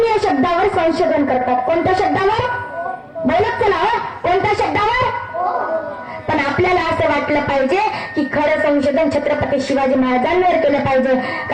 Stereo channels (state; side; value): identical; both; correlation 1.00